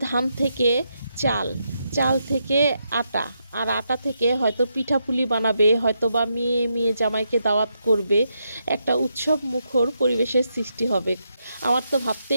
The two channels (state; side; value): inverted; both; correlation -0.82